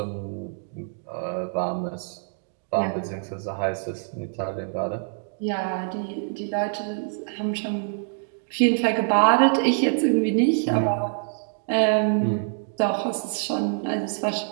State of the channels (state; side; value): silent; left; digital silence